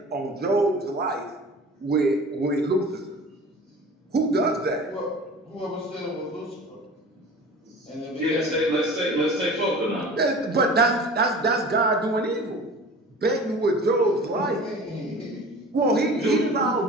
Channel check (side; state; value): both; normal; correlation 0.40